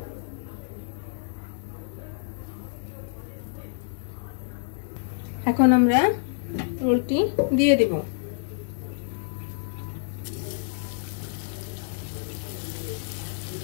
এখন আমরা রোলটি দিয়ে দিব।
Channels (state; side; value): silent; right; 59 dB below the other